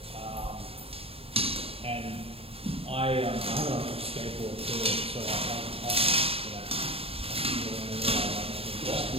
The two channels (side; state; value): left; late; 0.28 ms